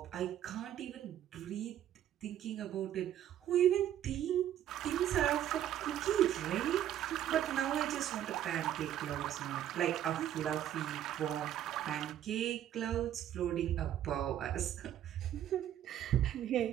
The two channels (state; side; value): quieter; left; 11.3 dB